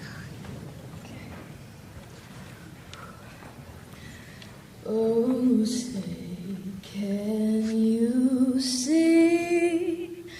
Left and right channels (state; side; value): identical; both; correlation 1.00